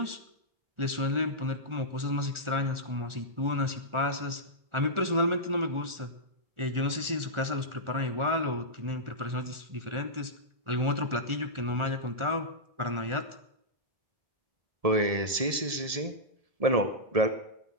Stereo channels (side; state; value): left; late; 1.4 ms